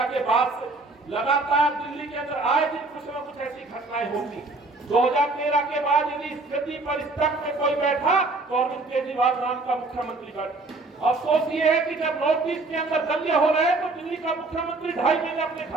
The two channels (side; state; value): left; quieter; 3.3 dB